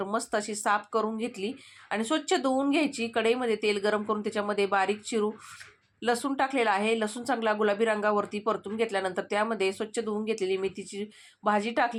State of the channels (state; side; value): identical; both; correlation 1.00